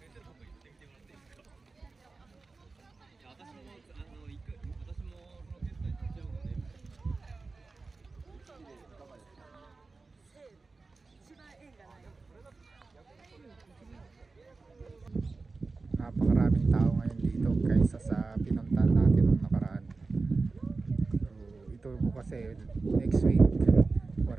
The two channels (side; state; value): left; quieter; 3.9 dB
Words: Napakaraming tao ngayon dito kaysa sa pinuntahan natin nung nakaraan. So ito po kasi next week